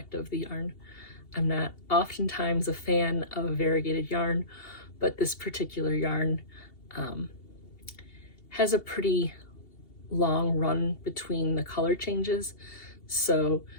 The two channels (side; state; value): right; late; 2.7 ms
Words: of the yarn. I'm not oftentimes a fan of variegated yarn, but this particular yarn has a pretty long run between the color changes. So